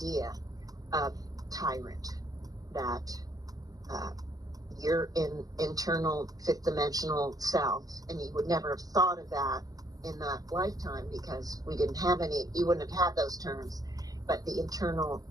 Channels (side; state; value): left; late; 0.18 ms